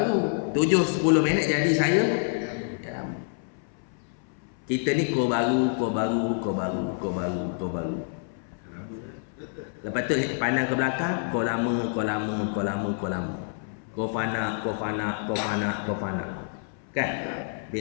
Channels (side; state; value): right; silent; 60 dB below the other